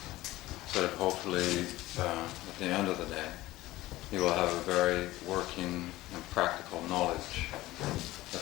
so that hopefully at the end of the day you will have a very working and practical knowledge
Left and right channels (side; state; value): right; quieter; 17.4 dB